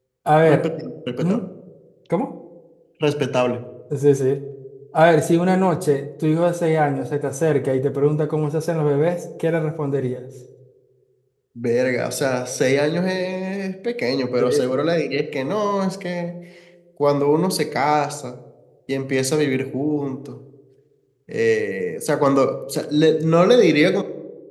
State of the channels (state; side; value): identical; both; correlation 1.00